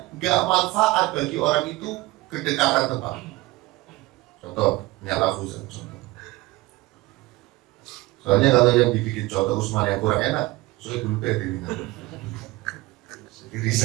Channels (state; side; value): quieter; left; 20.4 dB